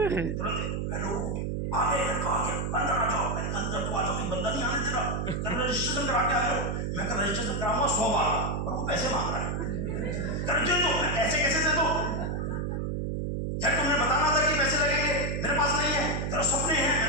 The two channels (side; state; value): right; noise; hum, 1 dB below the sound